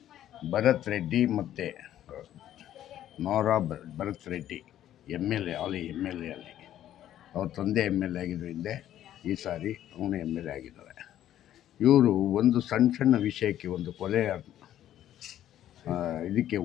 ಭರತ್ ರೆಡ್ಡಿ ಮತ್ತು ನೋರಾ ಭರತ್ ರೆಡ್ಡಿ MLA, ಅಲ್ಲಿ MLA ಅಲ್ಲಿ ಅವ್ರ ತಂದೆ MLA ಆಗಿದ್ರು ಹಿಂದೆ. ಈ ಸಾರಿ ಅವನು MLA ಆಗಿದ್ದಾರೆ. ಇವರು ಒಂದು ಸಣ್ಣ ವಿಷಯಕ್ಕೆ ಒಂದು ಕೊಲೆ ಇದಕ್ಕೆ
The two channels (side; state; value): right; quieter; 11.9 dB